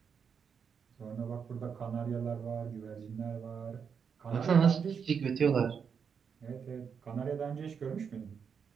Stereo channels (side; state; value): left; quieter; 6.6 dB